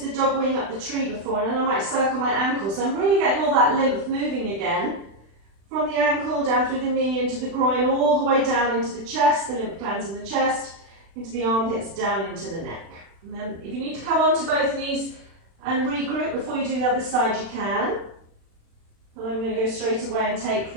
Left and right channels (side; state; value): left; late; 36 ms